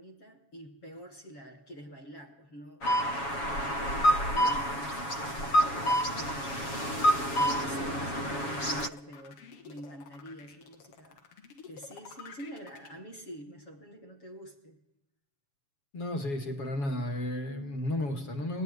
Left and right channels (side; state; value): right; late; 7.2 ms